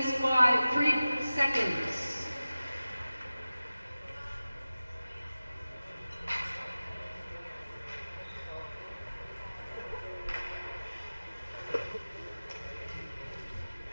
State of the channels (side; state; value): both; inverted; correlation -0.96